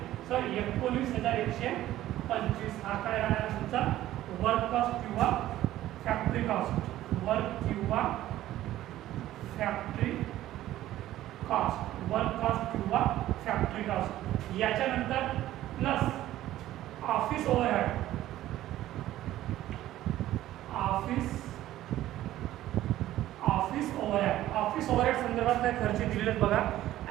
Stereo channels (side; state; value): left; quieter; 14.2 dB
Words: हा काय राहणार तुमचा वर्क कॉस्ट किंवा फॅक्टरी कॉस्ट. वर्क किंवा फॅक्टरी कॉस्ट. वर्क कॉस्ट किंवा फॅक्टरी कॉस्ट. याच्यानंतर plus office overhead. Office overhead. Office overhead संदर्भात काय खर्च दिलेले बघा.